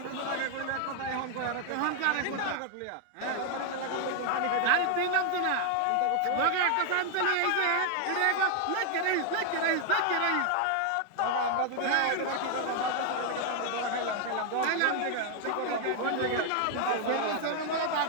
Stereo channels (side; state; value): both; different; correlation 0.00